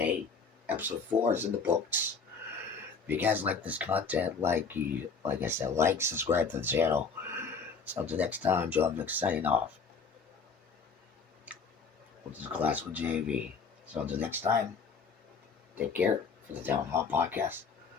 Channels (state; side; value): quieter; right; 5.0 dB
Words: Episode 4 is in the books. If you guys like this content, like I said, subscribe to the channel. So until next time, Joe Vic signing off. This is Classical JV. So until next time, take care for the Town Hall Podcast.